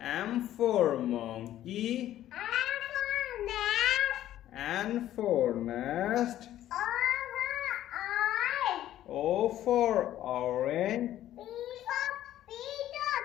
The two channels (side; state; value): right; quieter; 12.8 dB